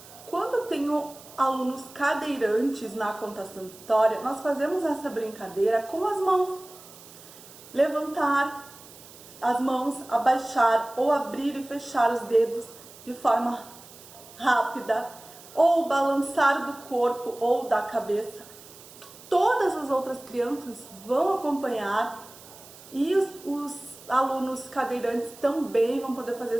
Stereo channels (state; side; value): noise; right; hiss, 20 dB below the sound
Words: Quando eu tenho alunos cadeirantes na contação de história, nós fazemos essa brincadeira com as mãos. Levantar as mãos, abaixar ou abrir e fechar os dedos de forma rápida, ou balançar do corpo ou da cabeça. Todas as outras crianças vão acompanhar e os alunos cadeirantes também vão poder fazer